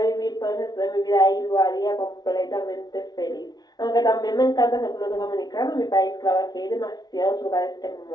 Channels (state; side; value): late; right; 0.19 ms